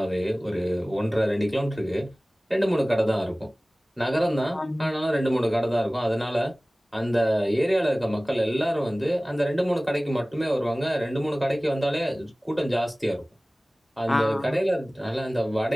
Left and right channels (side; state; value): both; normal; correlation 0.98